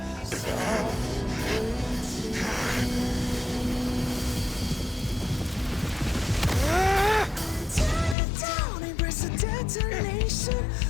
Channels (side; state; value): right; drops out; at 8.2 s